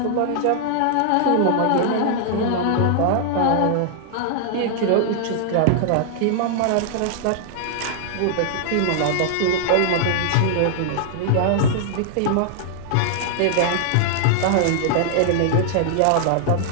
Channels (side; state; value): both; different; correlation -0.01